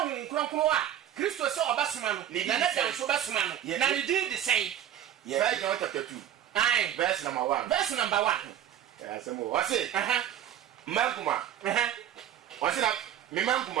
kronkron a kristo sɛ ɔbɛsoma no na ne da nso bɛsoma no na ne din de sɛn 1 John chapter 2 ae verse number 1 verse number 1 asɛm wɔ ɔse mmankuma ɔse na me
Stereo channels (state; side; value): quieter; left; 10.7 dB